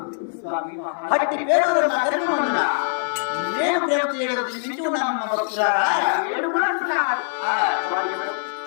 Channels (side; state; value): right; silent; 62 dB below the other